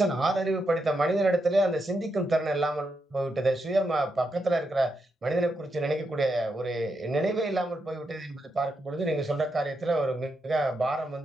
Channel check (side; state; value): both; normal; correlation 0.83